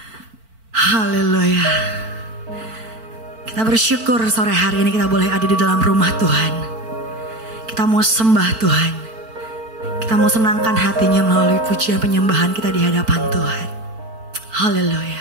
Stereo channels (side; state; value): left; late; 4.5 ms